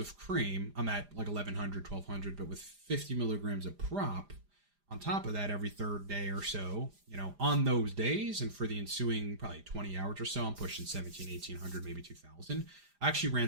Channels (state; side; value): late; left; 5.0 ms